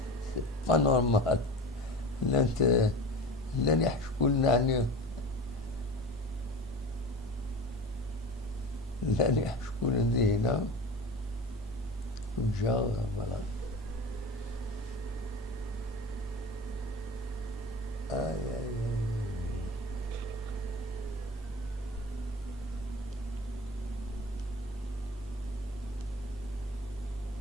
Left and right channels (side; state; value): both; normal; correlation 0.33